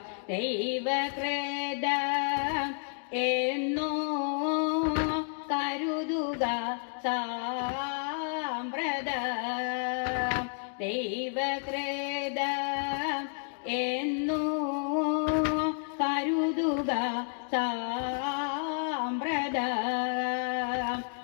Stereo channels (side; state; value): right; silent; 57 dB below the other